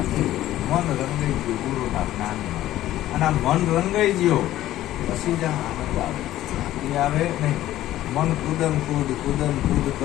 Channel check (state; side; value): quieter; right; 14.1 dB